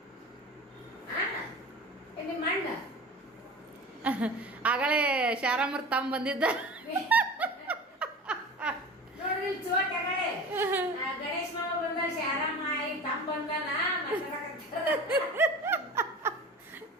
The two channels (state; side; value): normal; both; correlation 0.35